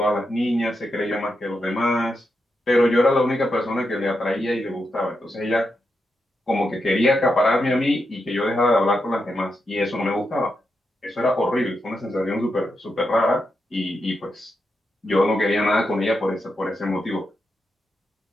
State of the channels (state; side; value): normal; both; correlation 0.85